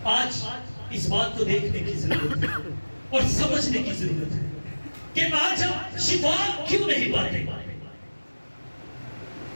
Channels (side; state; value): both; inverted; correlation -1.00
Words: آج اس بات کو دیکھنے کی ضرورت ہے اور سمجھنے کی ضرورت ہے کہ آج ہم شفا کیوں نہیں پاتے؟